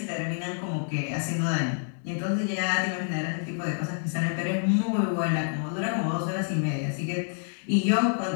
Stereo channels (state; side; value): silent; right; digital silence